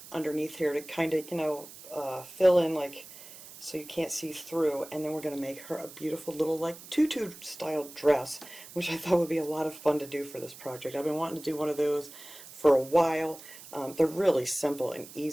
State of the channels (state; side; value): noise; right; hiss, 17 dB below the sound